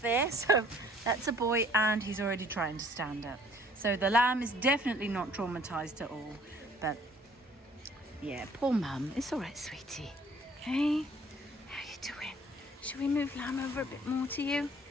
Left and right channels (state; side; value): normal; both; correlation 0.56